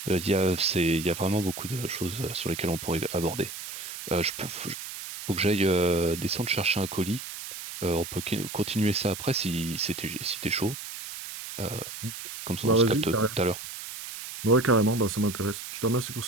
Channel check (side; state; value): right; noise; hiss, 9 dB below the sound